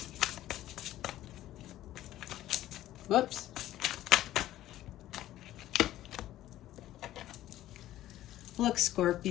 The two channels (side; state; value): right; quieter; 14.0 dB